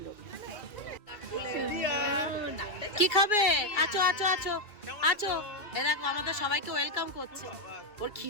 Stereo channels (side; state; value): right; late; 2.3 ms